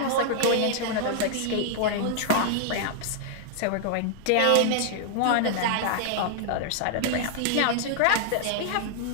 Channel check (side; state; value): both; different; correlation -0.01